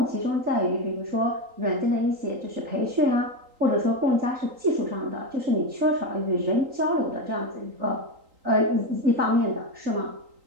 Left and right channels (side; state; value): left; late; 3.8 ms